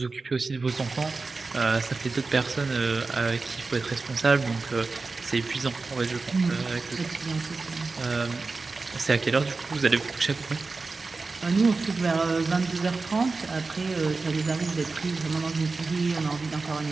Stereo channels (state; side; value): quieter; left; 3.9 dB